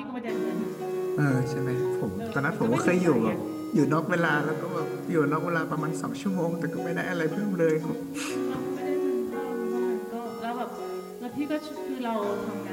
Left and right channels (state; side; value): identical; both; correlation 1.00